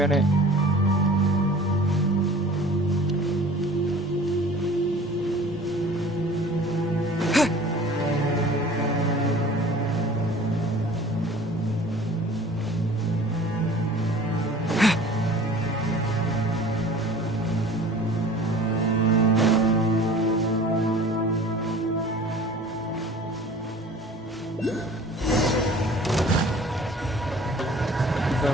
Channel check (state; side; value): normal; both; correlation 0.45